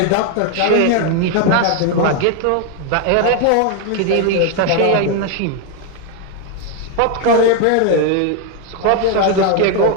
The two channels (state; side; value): different; both; correlation 0.01